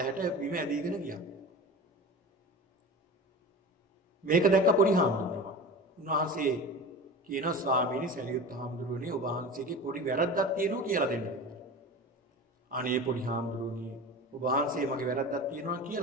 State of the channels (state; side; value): normal; both; correlation 0.32